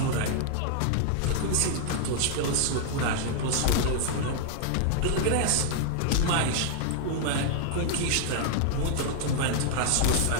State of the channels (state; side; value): different; both; correlation 0.00